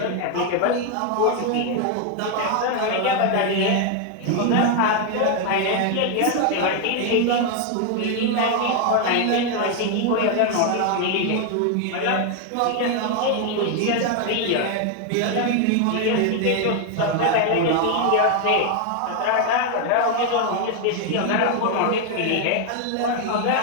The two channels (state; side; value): different; both; correlation 0.01